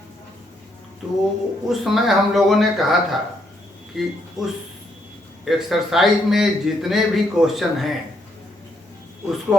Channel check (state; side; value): normal; both; correlation 0.74